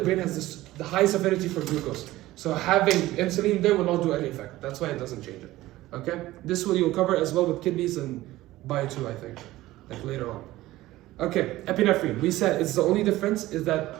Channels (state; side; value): quieter; left; 16.8 dB